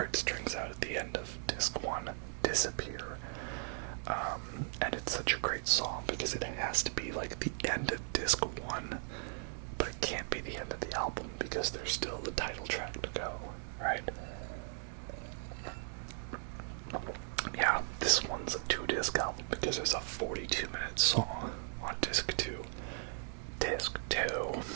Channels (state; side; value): silent; left; 53 dB below the other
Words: out at the end of Disc 1, Disappear. And it's such a great song because it has to be like the end of Disc 1, but it can't be the end of the album because there's still the title track to go, right? Yeah, this one's a 2-disc album because there's a 42-minute song on Disc 2. Disc 2.